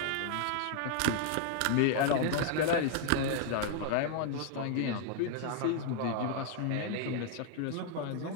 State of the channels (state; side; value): different; both; correlation 0.00